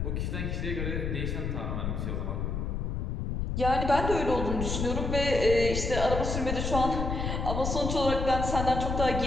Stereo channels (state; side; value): noise; left; rumble, 2 dB below the sound